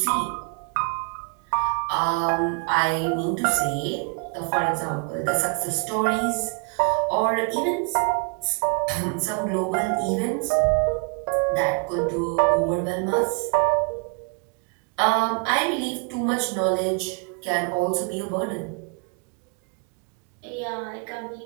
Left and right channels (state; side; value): quieter; left; 36.3 dB